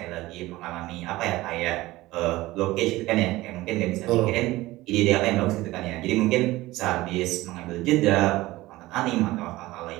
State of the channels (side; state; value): left; quieter; 18.3 dB